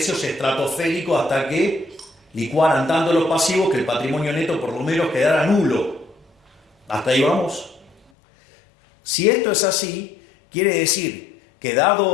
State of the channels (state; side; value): drops out; right; at 8.0 s